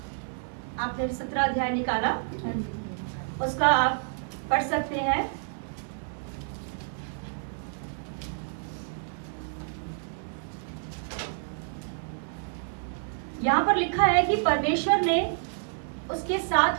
आपने 17 अध्याय निकाला, उसका आप पढ़ सकते हैं। यहाँ पर लिखा है कि परमेश्वर ने उसके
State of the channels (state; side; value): silent; left; 59 dB below the other